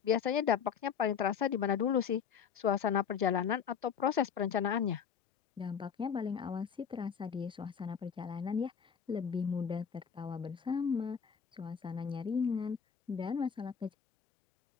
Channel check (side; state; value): right; quieter; 7.3 dB